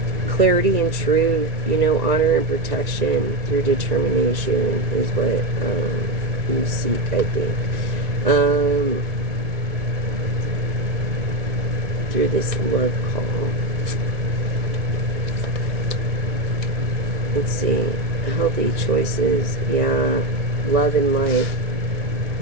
clarity and truth, you know, honor and protection through determination is what you seek, I think. Through this love call. Let's see. Healthy choices. Yeah. Love in life.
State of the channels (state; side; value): late; left; 2.2 ms